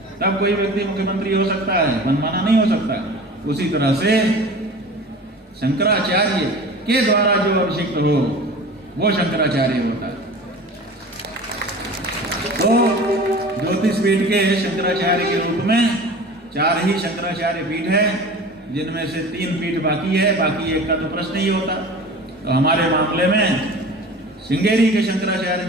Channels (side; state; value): both; normal; correlation 0.38